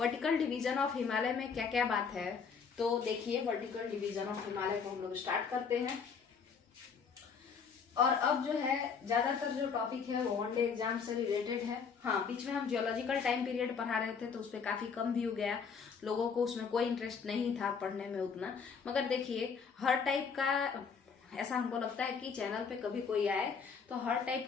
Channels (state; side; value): quieter; right; 6.0 dB